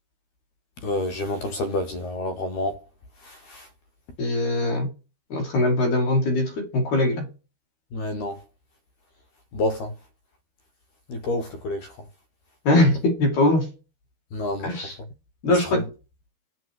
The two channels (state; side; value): late; right; 13 ms